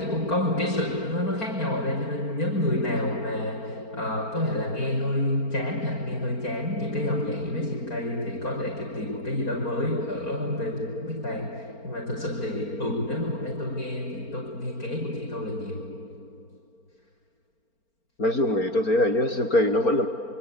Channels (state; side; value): late; right; 4.4 ms